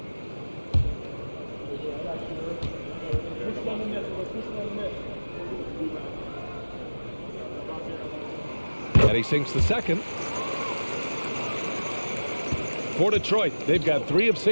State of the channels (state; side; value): inverted; both; correlation -1.00